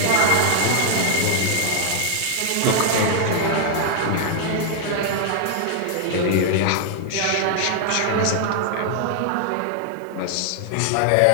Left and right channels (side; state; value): both; different; correlation 0.00